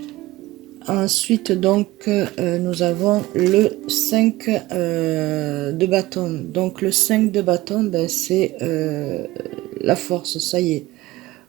Ensuite, donc, nous avons le 5 de bâton. Donc, le 5 de bâton, ben, c'est la force, ça y est.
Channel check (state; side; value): quieter; left; 18.3 dB